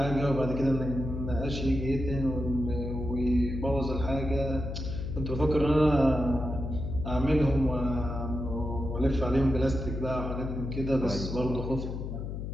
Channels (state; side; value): noise; left; hum, 5 dB below the sound